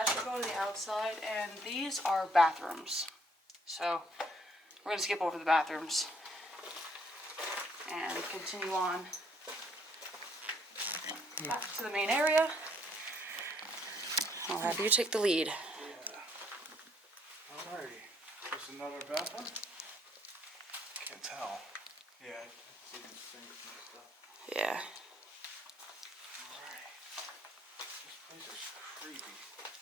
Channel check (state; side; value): normal; both; correlation 0.67